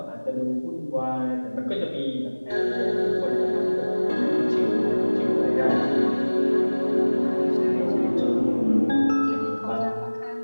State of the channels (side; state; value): both; inverted; correlation -1.00